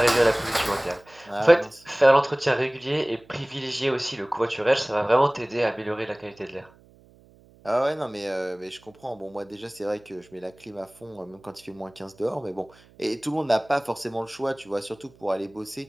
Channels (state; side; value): noise; right; hum, 27 dB below the sound